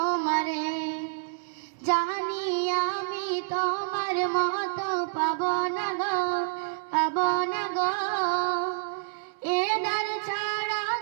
জানি আমি তোমার মতো পাবো না গো এ দ্বার ছাড়া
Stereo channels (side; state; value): left; silent; 59 dB below the other